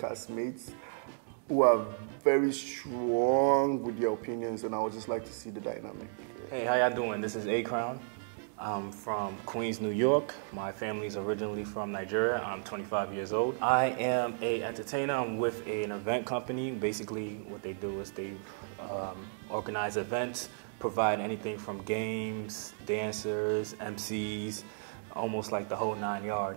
who are very strong with their opinions, and I would just like to see the dynamic. Hey, how y'all doing? This is ACROWN. I'm from Queens, New York. My family's originally from Nigeria. I'm 25 years old. I am an entertainer. I'm with an event company. Basically, what they do is they organize events, provide anything from games, dancers, MCs, almost like the whole 9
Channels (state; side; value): silent; left; digital silence